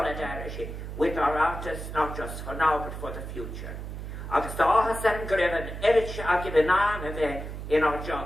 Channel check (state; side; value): noise; right; hum, 8 dB below the sound